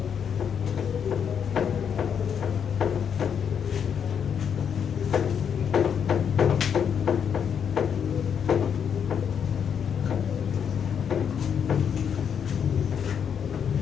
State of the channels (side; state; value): right; quieter; 7.7 dB